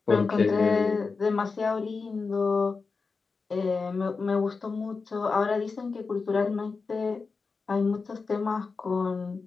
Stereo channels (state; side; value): quieter; right; 4.5 dB